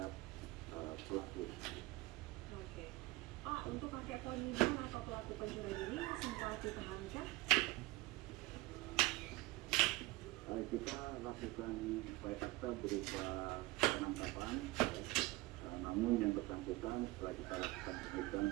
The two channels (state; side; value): quieter; left; 20.4 dB